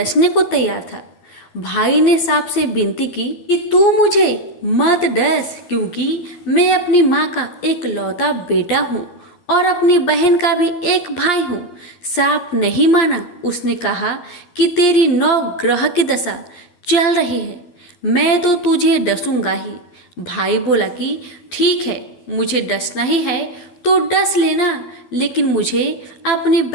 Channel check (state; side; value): late; right; 11 ms